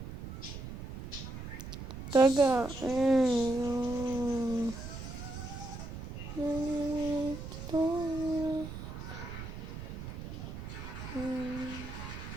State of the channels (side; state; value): right; noise; rumble, 9 dB below the sound